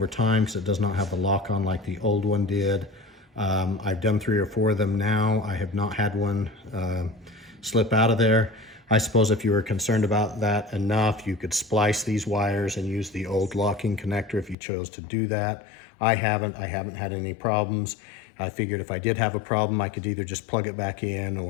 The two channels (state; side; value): drops out; right; at 14.6 s